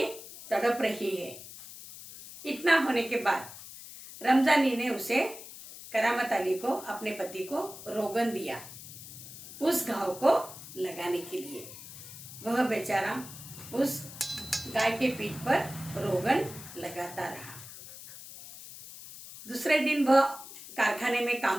तड़प रही है। इतना होने के बाद रमजानी ने उसे, करामत अली को, अपने पति को रोगन दिया उस घाव को लगाने के लिए। वह बेचारा उस गाय के पीठ पर रोगन लगाता रहा। दूसरे दिन वह कारखाने में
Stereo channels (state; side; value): noise; left; hiss, 14 dB below the sound